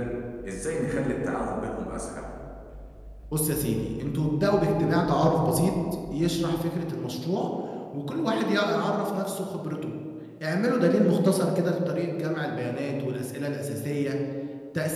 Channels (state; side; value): identical; both; correlation 1.00